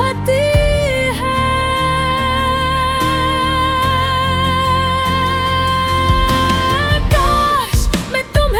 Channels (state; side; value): identical; both; correlation 1.00